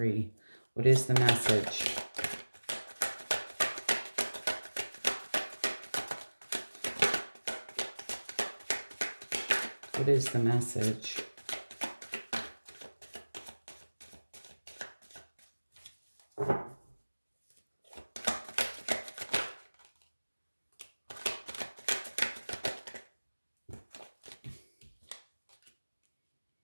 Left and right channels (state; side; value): inverted; both; correlation -1.00